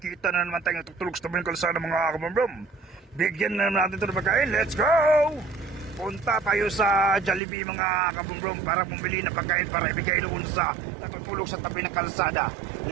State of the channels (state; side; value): drops out; left; at 7.4 s